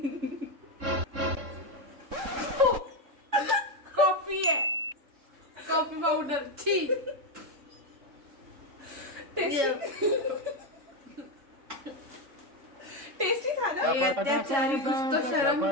कॉफी है। Coffee powder. छी। टेस्टी था ना? अत्याचारी, कुछ तो शर्म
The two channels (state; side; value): late; left; 3.7 ms